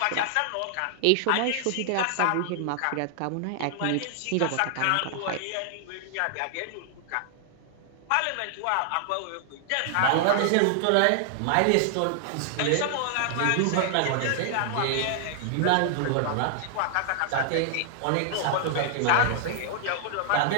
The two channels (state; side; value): different; both; correlation -0.01